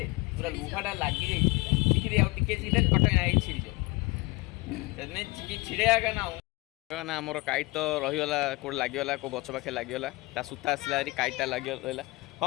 पूरा लुहाटा लागी जाई चिकी दे आ टिके जिले कटै नाइ छिरि जो तने चिकी छिड़े आगा ना ना हमर काइट तो रहियोला कोड लागियोला को गछ पाखे लागियोला ता सुता आसला री काइटा लागियोला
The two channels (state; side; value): quieter; right; 23.4 dB